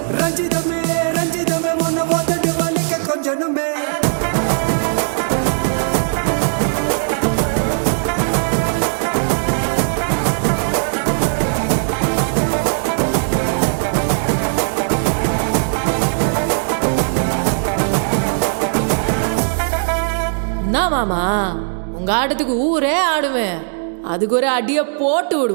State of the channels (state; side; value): silent; left; digital silence